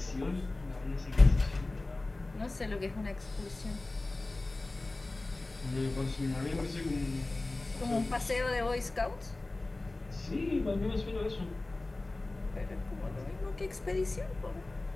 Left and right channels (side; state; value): right; quieter; 3.0 dB